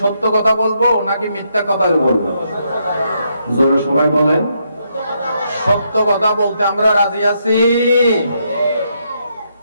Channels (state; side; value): inverted; both; correlation -0.77